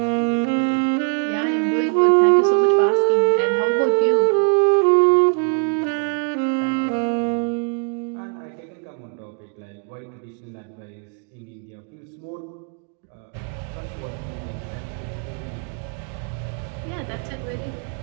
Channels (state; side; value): quieter; left; 39.4 dB